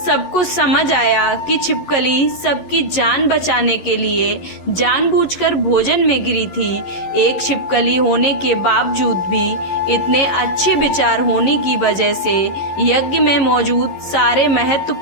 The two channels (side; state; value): right; late; 11 ms